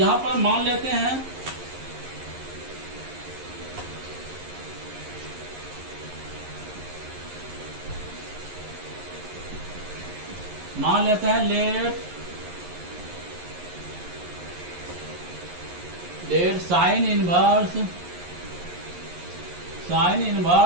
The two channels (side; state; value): left; late; 11 ms